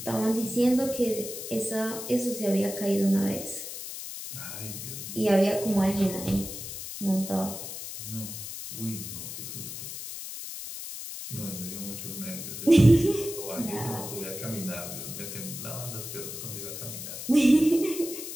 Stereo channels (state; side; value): noise; left; hiss, 8 dB below the sound